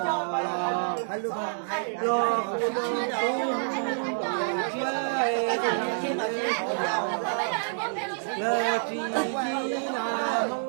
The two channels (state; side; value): silent; left; 60 dB below the other